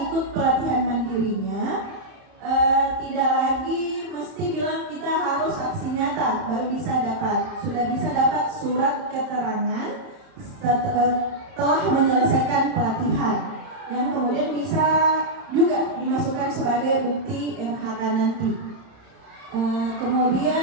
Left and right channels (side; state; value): left; late; 31 ms